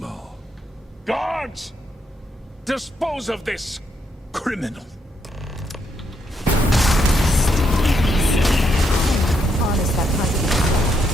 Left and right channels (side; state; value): both; normal; correlation 0.77